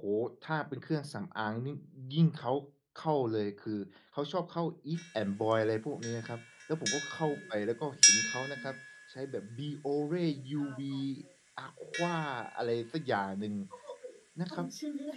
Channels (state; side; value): identical; both; correlation 1.00